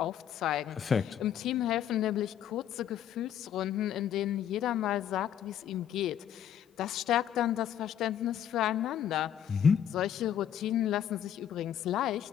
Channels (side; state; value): right; quieter; 9.7 dB